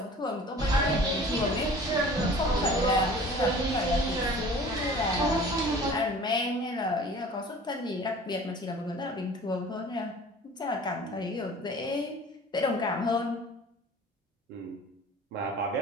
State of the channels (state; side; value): normal; both; correlation 0.45